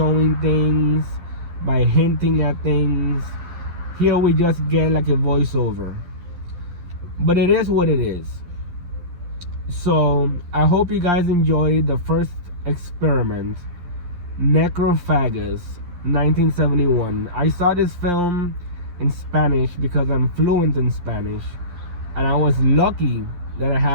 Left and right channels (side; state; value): left; late; 11 ms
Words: things, by hinting at things. Here we just get like a voiceover, but it is what it is. So I hope you guys enjoyed the first experiment, Necrophagous, 1971. I saw this film in Spanish because I'm fluent in Spanish, and I was lucky that I